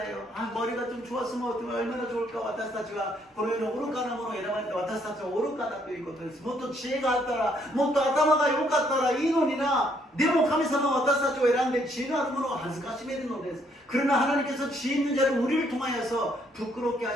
아, 머리가 좀 좋았으면 얼마나 좋을까. 私たちはこの世の愚かなものを選ばれて、私たちは愚かだということです。もっと知恵があったら、もっと頭が良かったらいいのにな。でも神様は私たちを選んで知恵のあるものを恥ずかしめるのです。 그러나 하나님께서 지혜 있는 자를 우리를 통하여서 부끄럽게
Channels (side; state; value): both; normal; correlation 0.69